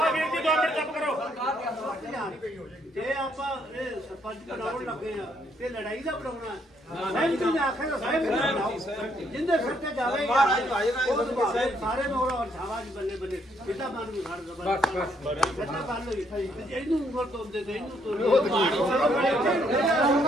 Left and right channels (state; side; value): normal; both; correlation 0.71